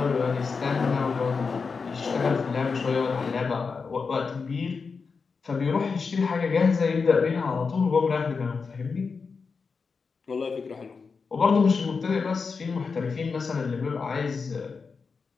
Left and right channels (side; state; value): right; quieter; 5.0 dB